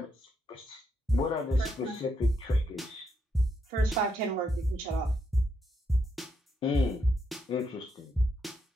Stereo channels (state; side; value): normal; both; correlation 0.79